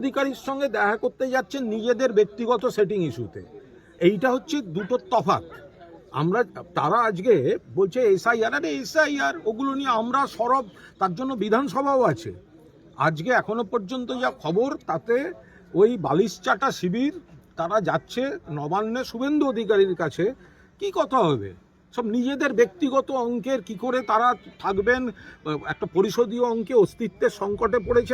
সঙ্গে দেখা করতে যাচ্ছেন নিজেদের ব্যক্তিগত সেটিং ইস্যুতে। এইটা হচ্ছে দুটো তফাৎ। তারা আজকে বলছে এসআইআর, ওগুলো নিয়ে আমরা সরব, তার জন্য বিধানসভাও আছে। আজকে এখনো পর্যন্ত যা খবর, তাতে ওই বালিশচাটা শিবির তারা যাচ্ছে নবান্নে শুভেন্দু অধিকারীর কাছে। কি কথা হবে? সব নিজেদের ব্যক্তিগত অঙ্কের, কি করে তারা থাকবেন, একটা পরিশোধীয় অঙ্কে অস্তিত্বের সংকটে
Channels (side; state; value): both; identical; correlation 1.00